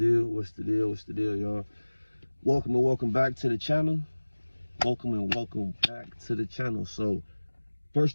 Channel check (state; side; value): inverted; both; correlation -1.00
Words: What's the deal? What's the deal, y'all? Welcome and welcome back to the channel. Welcome and welcome back to the channel. So,